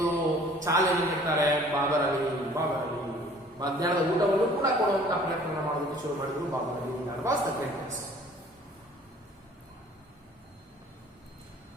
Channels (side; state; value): both; normal; correlation 0.52